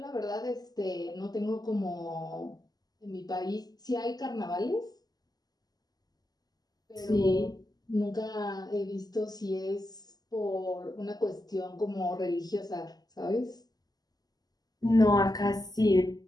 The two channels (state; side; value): late; right; 0.19 ms